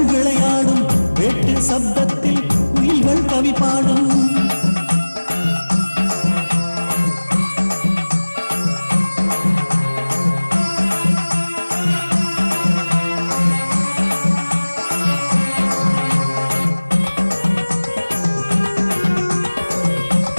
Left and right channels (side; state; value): both; inverted; correlation -1.00